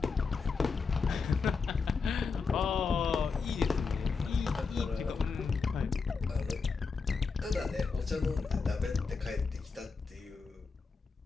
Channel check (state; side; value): quieter; right; 4.8 dB